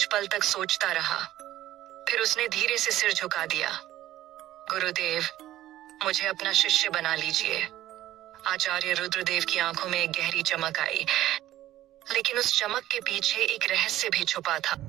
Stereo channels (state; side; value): quieter; left; 14.1 dB